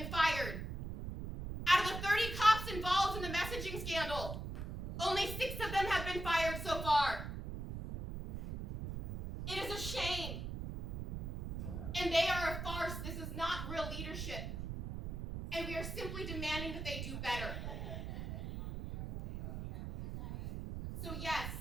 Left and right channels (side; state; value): right; noise; rumble, 5 dB below the sound